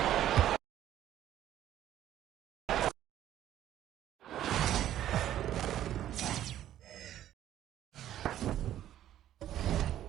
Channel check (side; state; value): left; quieter; 12.0 dB